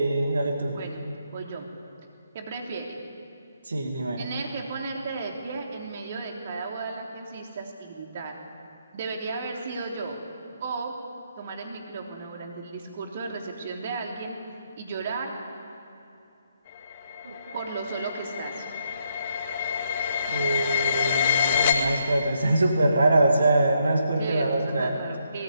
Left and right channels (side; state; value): both; inverted; correlation -0.75